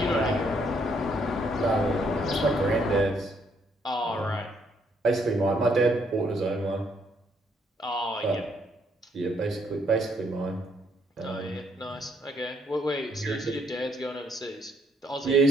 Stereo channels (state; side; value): normal; both; correlation 0.71